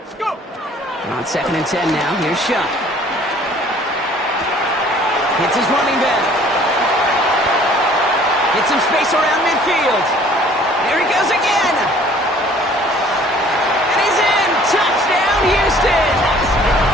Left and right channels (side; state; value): both; normal; correlation 0.54